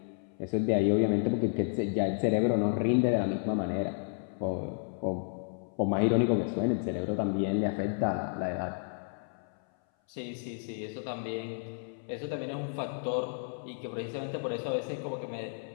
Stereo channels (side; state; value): right; silent; 57 dB below the other